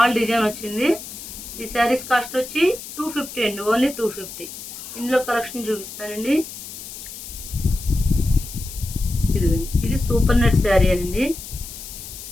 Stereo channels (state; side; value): noise; left; hiss, 12 dB below the sound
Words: డిజైన్ వచ్చింది. ఈ శారీస్ కాస్ట్ వచ్చి 250 అండి, ఓన్లీ 250. ఇందులో కలెక్షన్ చూపిస్తానండి. ఇది సూపర్ నెట్ శారీ అండి.